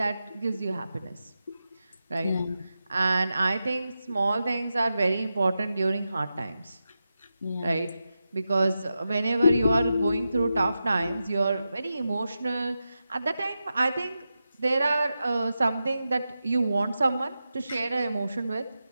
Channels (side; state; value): both; inverted; correlation -0.90